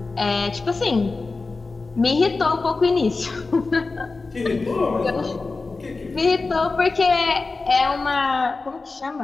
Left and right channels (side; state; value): right; quieter; 3.8 dB